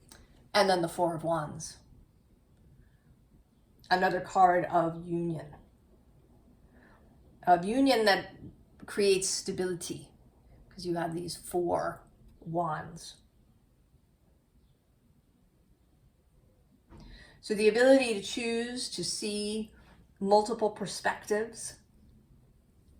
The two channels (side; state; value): both; identical; correlation 1.00